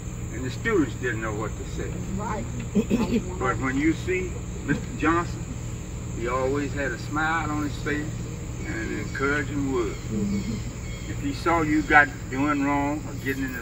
and the students didn't know what to say. Right. But when you see Mr. Johnson, he always had a smile on his face and an encouraging word. If he saw you got doing wrong or getting in the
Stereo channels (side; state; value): both; identical; correlation 1.00